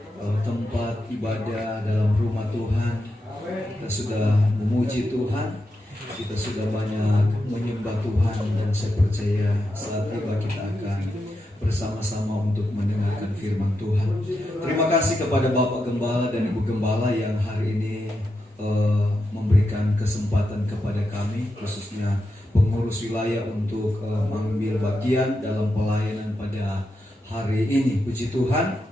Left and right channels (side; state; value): both; normal; correlation 0.86